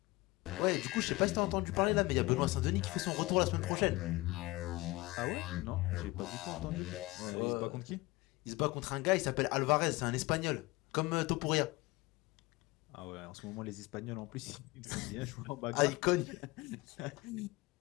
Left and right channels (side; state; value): right; quieter; 21.5 dB